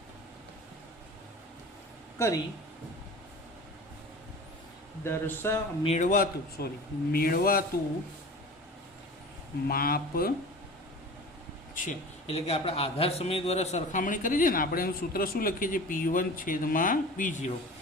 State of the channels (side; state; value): both; normal; correlation 0.37